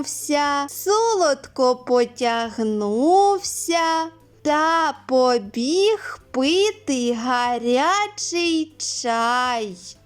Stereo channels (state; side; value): identical; both; correlation 1.00